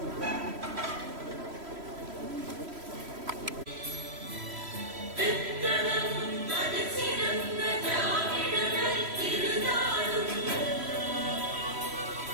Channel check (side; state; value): left; late; 3.1 ms